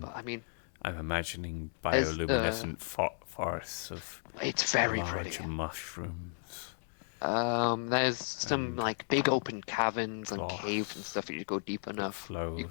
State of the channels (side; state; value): right; silent; digital silence